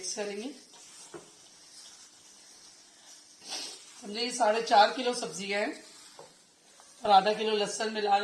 करेंगे। समझे 4.5 किलो सब्जी है और आधा किलो लहसुन मिला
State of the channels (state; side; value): identical; both; correlation 1.00